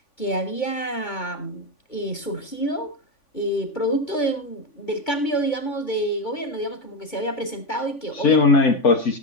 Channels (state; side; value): late; right; 3.5 ms